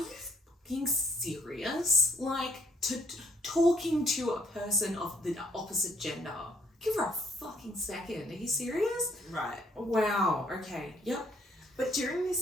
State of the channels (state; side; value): normal; both; correlation 0.66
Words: fucking serious? Talking to a person of the opposite gender. Give her a fucking second. Are you serious? Right. Wow, okay, yep. But during